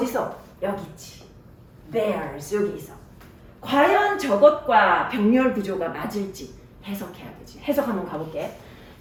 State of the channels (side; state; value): both; identical; correlation 1.00